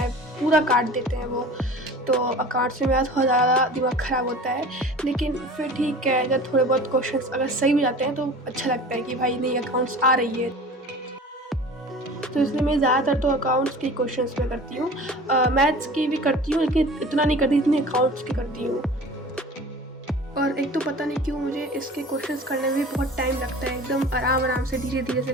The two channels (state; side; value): normal; both; correlation 0.40